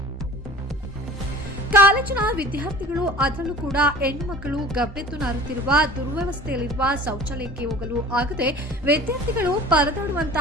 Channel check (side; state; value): both; normal; correlation 0.42